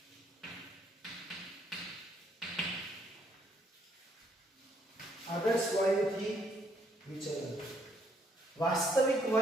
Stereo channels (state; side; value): normal; both; correlation 0.69